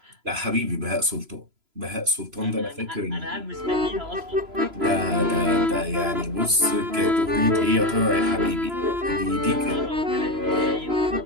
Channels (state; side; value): late; left; 3.0 ms